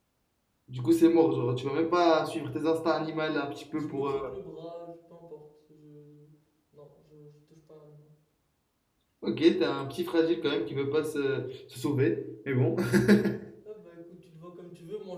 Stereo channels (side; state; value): both; identical; correlation 1.00